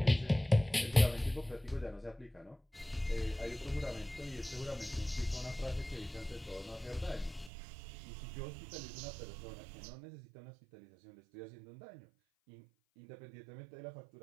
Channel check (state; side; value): drops out; left; at 7.5 s